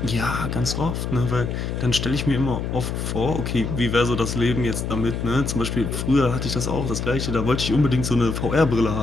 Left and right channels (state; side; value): noise; left; hum, 3 dB below the sound